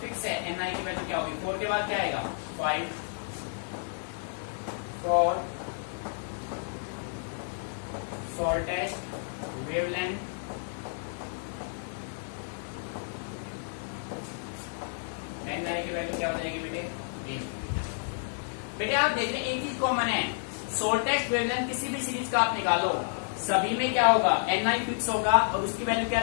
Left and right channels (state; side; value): silent; right; digital silence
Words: फिक्स है, NI की वैल्यू क्या होगी 4 के बाद क्या आएगा 5 फॉर शॉर्टेस्ट वेवलेंथ, NI की वैल्यू क्या हो जाएगी बेटे बेटे आप देख रहे हैं एक चीज कॉमन है, शॉर्टेस्ट वेवलेंथ किसी भी सीरीज का आप निकालो सभी में क्या होगा NI फिक्स होगा और उसकी वैल्यू क्या